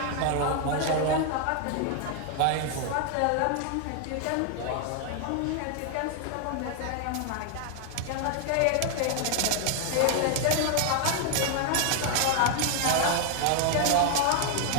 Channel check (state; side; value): different; both; correlation 0.00